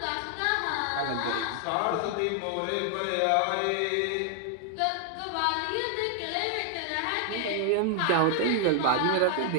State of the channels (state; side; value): different; both; correlation 0.00